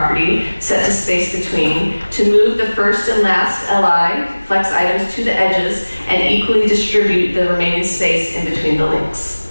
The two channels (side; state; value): both; inverted; correlation -1.00